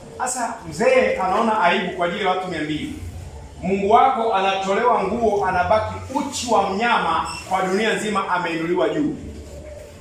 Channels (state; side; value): identical; both; correlation 1.00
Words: Sasa mzee anaona aibu kwa ajili ya watu 200. Mungu wako anatolewa nguo, anabaki uchi wa mnyama, kwa dunia nzima ameinuliwa juu.